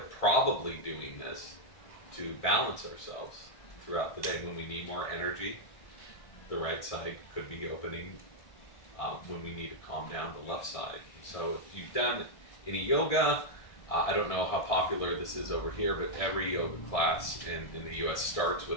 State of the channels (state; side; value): late; right; 1.7 ms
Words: doing this to balance ourselves throughout the day. When we need more energy, the right side could be opening. When we need to calm down, the left side. So if you've done any yoga, I don't know how popular this is over here, but every yoga class in the US starts